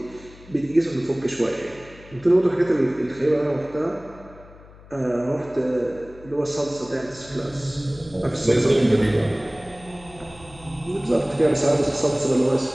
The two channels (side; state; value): left; noise; hum, 21 dB below the sound